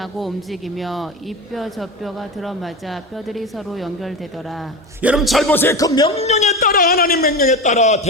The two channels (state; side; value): normal; both; correlation 0.23